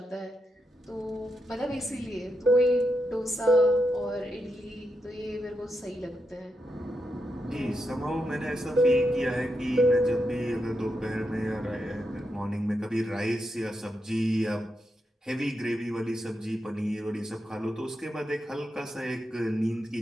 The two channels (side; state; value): both; normal; correlation 0.84